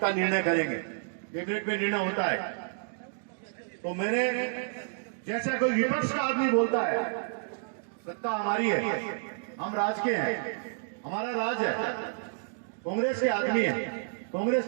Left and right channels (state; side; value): silent; left; digital silence